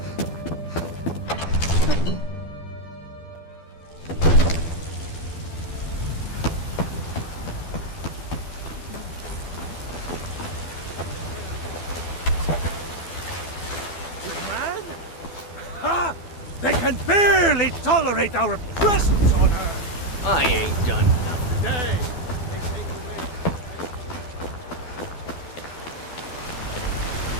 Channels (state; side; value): late; right; 12 ms